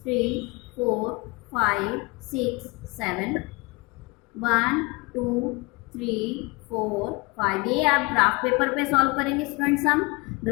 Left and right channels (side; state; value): right; quieter; 27.0 dB